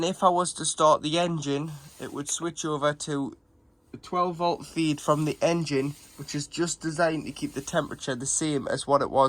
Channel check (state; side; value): identical; both; correlation 1.00